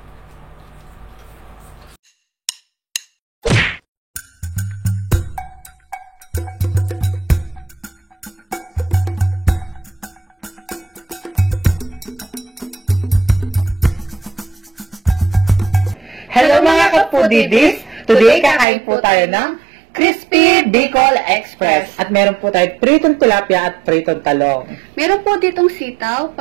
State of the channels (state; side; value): drops out; left; at 18.7 s